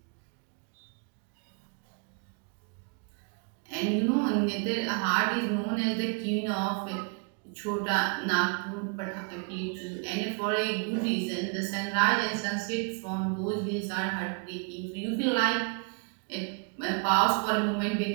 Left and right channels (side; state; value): left; quieter; 36.3 dB